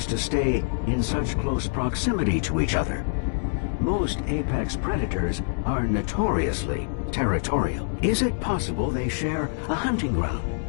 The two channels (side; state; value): right; silent; digital silence